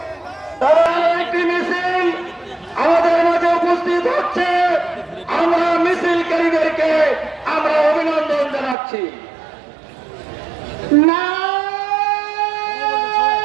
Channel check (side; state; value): left; drops out; at 8.8 s